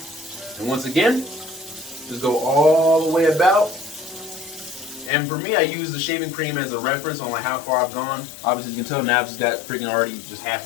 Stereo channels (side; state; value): right; drops out; at 5.1 s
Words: And once again, just go all the way about. And for me, I use the shaving cream as a reference on like how far I've gone. Obviously, you can tell now I've just got freaking already just